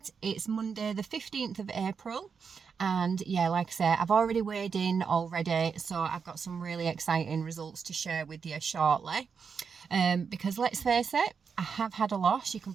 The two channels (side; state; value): left; quieter; 6.0 dB